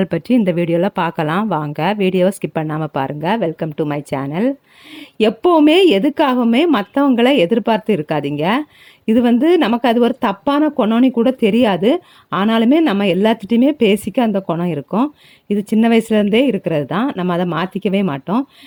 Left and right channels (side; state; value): both; identical; correlation 1.00